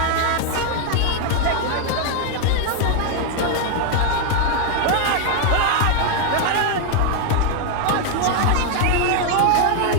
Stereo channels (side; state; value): both; different; correlation 0.00